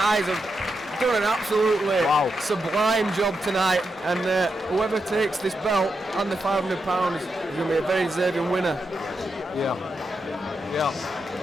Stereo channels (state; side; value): normal; both; correlation 0.85